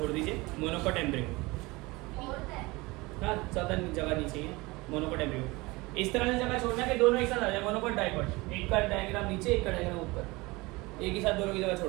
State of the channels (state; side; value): quieter; left; 23.0 dB